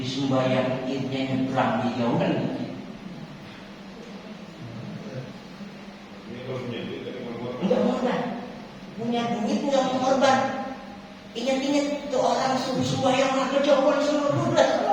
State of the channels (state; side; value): identical; both; correlation 1.00